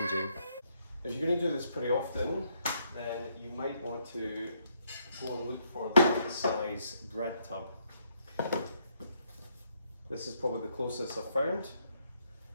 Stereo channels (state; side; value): inverted; both; correlation -0.73